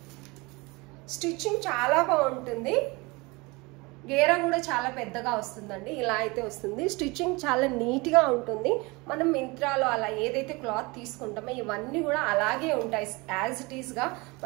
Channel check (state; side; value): quieter; left; 25.3 dB